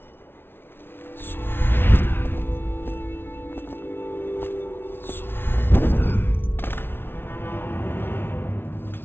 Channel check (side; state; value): right; late; 0.11 ms